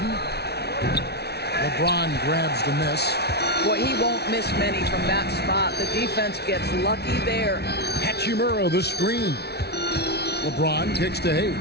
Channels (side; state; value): right; late; 0.48 ms